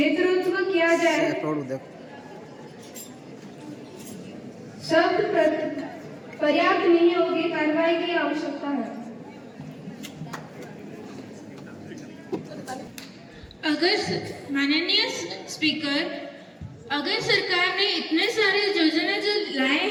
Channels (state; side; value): identical; both; correlation 1.00